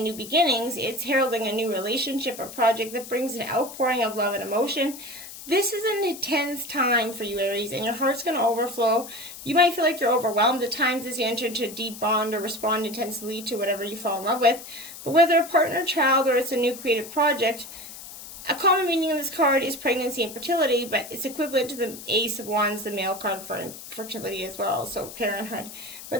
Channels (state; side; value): noise; left; hiss, 13 dB below the sound